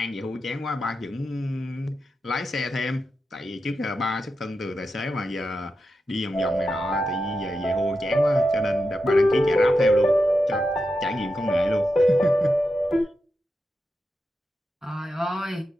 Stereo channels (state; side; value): normal; both; correlation 0.89